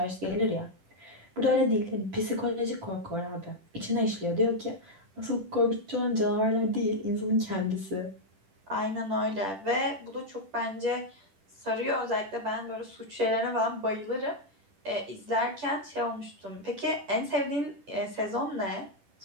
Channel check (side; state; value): left; late; 10 ms